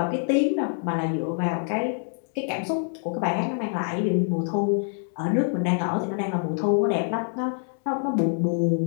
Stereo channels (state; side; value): silent; right; 61 dB below the other